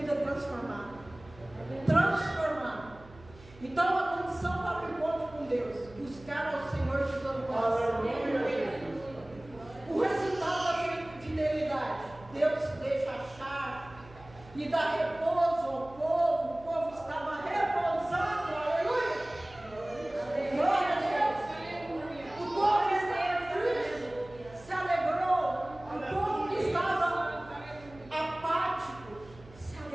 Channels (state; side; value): noise; right; hum, 21 dB below the sound